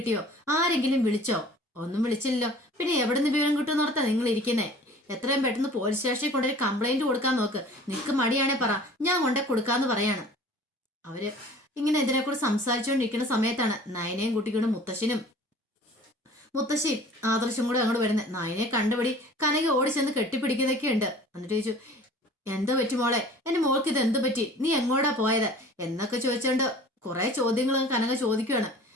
ആരെങ്കിലും വിളിച്ചോ? ഒന്നും വിളിച്ചില്ലല്ലോ. പിന്നെ എവിടെ നിന്ന് വിവരം കിട്ടുമെന്ന് ഓർത്താ നിങ്ങൾ ഇരിക്കുന്നേ? എത്രയും പെട്ടെന്ന് പോലീസ് സ്റ്റേഷനിൽ കൊണ്ടുപോയി കംപ്ലൈന്റ് കൊടുക്കാൻ നോക്ക്. നിനക്ക് മടിയാണേ പറ, ഞാൻ കൊണ്ടേ കൊടുക്കാന്ന് പറയാണ്. അവര് ഇങ്ങനെ ഇതിനെക്കൂടെ സംസാരിച്ചുകൊണ്ടിരിക്കുന്ന സമയത്താണ് നയനയും കുട്ടിക്കൊണ്ട് മുത്തശ്ശിയും ആദർശം കൂടെ അങ്ങോട്ട് വരുന്നത്. നയനെ കണ്ടുപിടി കനക ഓടി ചെന്ന് കെട്ടിപ്പിടിക്കുന്നതൊക്കെ ഉണ്ട്. എന്നിട്ട് ചോദിച്ചു, എന്തോ പറ്റി മോളെ? എന്റെ മോൾക്ക് ഇത് എന്ത് പറ്റി? നീ എങ്ങോട്ടാ പോയത് എന്നൊക്കെ ചോദിച്ചോണ്ട് കുറെ ചോദ്യങ്ങൾ കനക ചോദിക്കുകയാണ്.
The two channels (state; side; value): normal; both; correlation 0.46